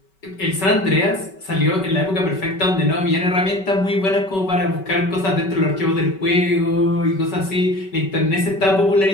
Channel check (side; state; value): right; late; 5.3 ms